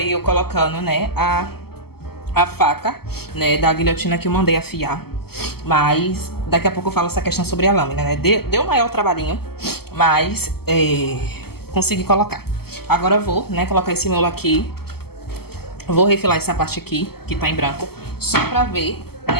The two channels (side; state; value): right; late; 0.96 ms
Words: eu colocando, né, a faca, né, da guilhotina que eu mandei afiar. Mas daqui a pouco eu falo essa questão sobre a lâmina, né? Deu maior trabalhinho, mas consegui colocar. Agora eu vou, né, colocar esse miolo aqui. Vou refilar essa parte aqui, que tá em branco, só pra ver,